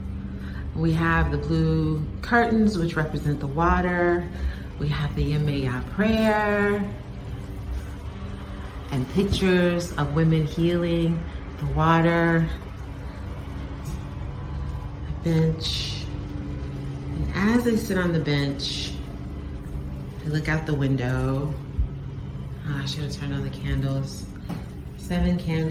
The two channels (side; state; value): both; identical; correlation 1.00